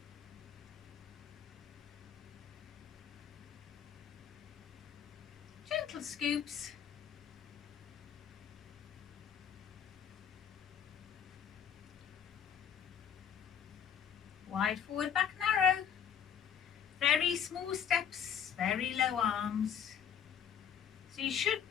little scoops. Wide forward, back narrow. Very small steps, very low arms. So you should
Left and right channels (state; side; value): quieter; right; 8.3 dB